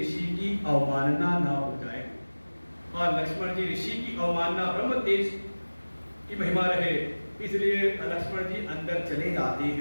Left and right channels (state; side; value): inverted; both; correlation -1.00